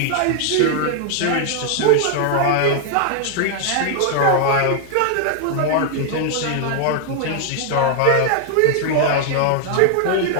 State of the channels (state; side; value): different; both; correlation 0.00